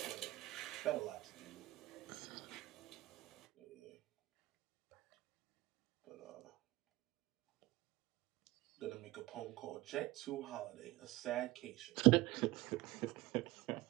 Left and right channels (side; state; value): left; quieter; 18.8 dB